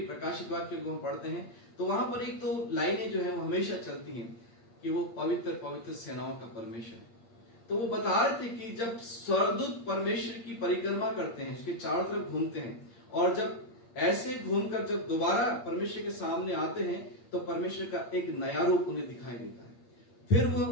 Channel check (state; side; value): late; right; 8.6 ms